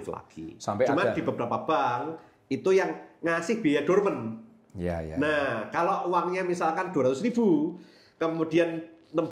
lagi. Cuman di beberapa bank itu yang ngasih biaya dormant. Nah, kalau uangnya misalkan 200.000, kemudian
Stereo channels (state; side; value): identical; both; correlation 1.00